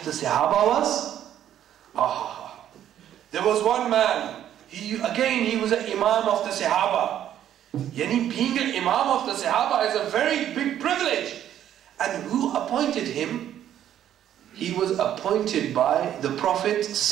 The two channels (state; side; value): quieter; left; 10.9 dB